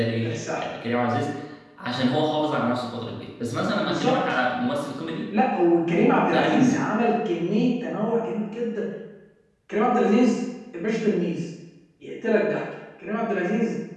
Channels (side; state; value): both; identical; correlation 1.00